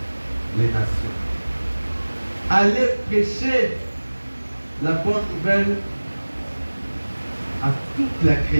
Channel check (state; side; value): inverted; both; correlation -1.00